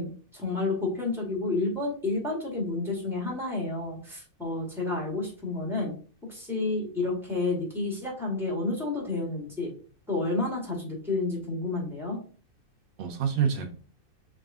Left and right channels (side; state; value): left; late; 2.6 ms